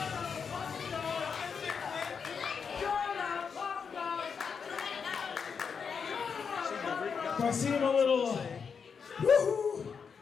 If I seem a little woohoo,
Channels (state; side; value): quieter; right; 6.1 dB